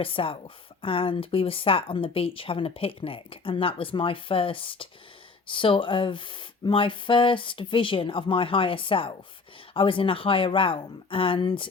self, and we were sat on the beach having a picnic, and that was my first vision of my higher self. I was in a higher realm, and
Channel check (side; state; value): right; quieter; 4.4 dB